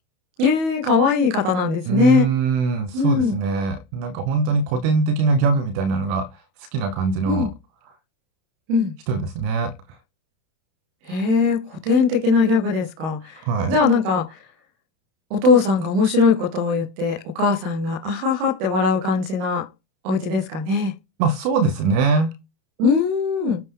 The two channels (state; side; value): late; left; 31 ms